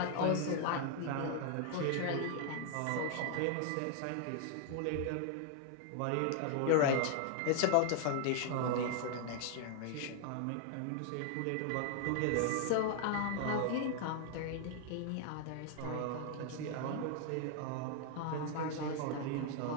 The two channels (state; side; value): different; both; correlation 0.00